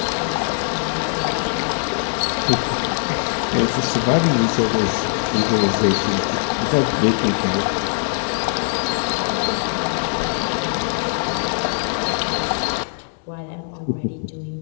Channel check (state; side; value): silent; right; digital silence